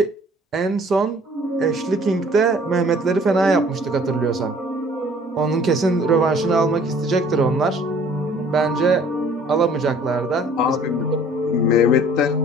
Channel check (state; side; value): normal; both; correlation 0.54